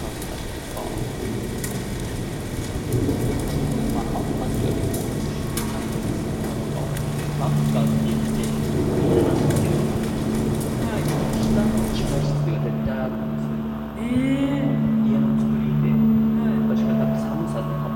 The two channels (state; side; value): identical; both; correlation 1.00